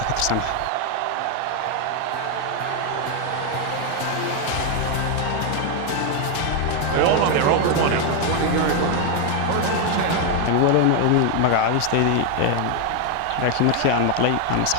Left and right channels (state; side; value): different; both; correlation 0.01